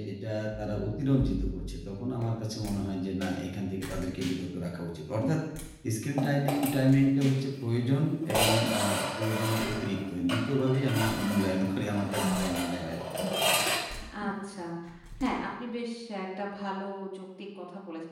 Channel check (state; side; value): identical; both; correlation 1.00